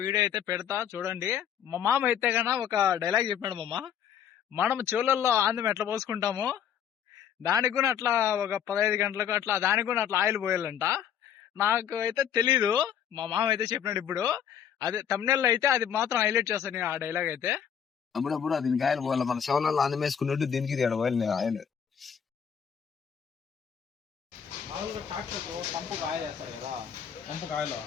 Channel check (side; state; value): right; quieter; 8.6 dB